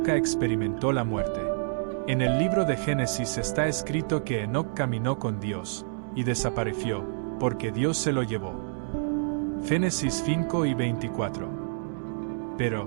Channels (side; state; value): left; silent; digital silence